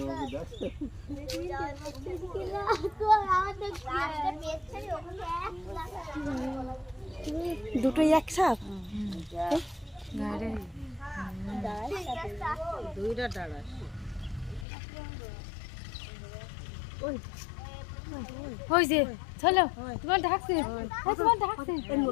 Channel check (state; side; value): drops out; right; at 14.7 s